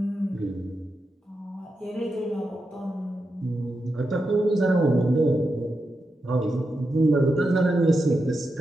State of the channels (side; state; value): both; normal; correlation 0.88